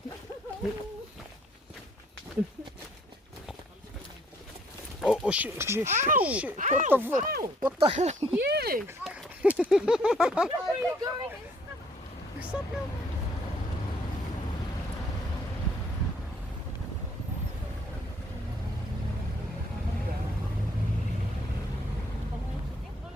Oh shit. What the fuck? What the hell? You! Where are you going?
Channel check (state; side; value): normal; both; correlation 0.63